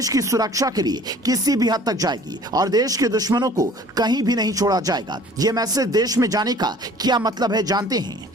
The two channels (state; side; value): normal; both; correlation 0.50